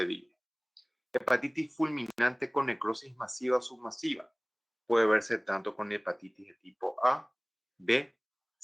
Hepatitis fulminante con necrosis masiva o submasiva. Puede verse tanto con hepatitis de tipo A, B,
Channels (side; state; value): both; identical; correlation 1.00